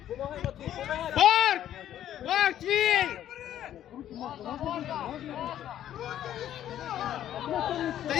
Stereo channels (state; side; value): quieter; right; 11.4 dB